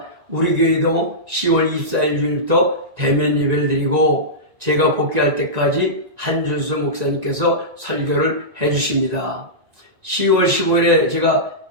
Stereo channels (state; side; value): late; left; 1.9 ms